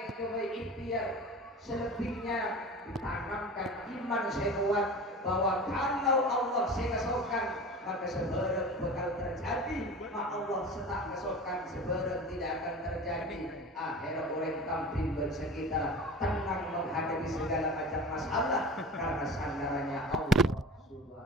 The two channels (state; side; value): normal; both; correlation 0.35